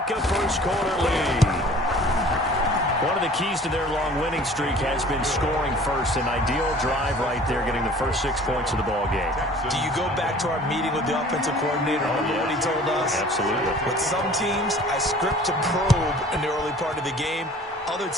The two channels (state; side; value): normal; both; correlation 0.48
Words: a first-quarter lead. One of the keys to their long winning streak has been scoring first. An ideal drive right there, getting the first 6 points of the ball game. Do you go back to our meeting with the offensive coordinator? Remember what he told us? Absolutely. With some teams, I script to probe in the early part of the game. Other